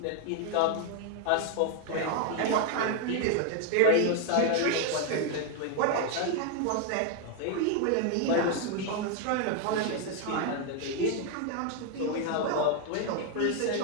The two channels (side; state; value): both; different; correlation 0.01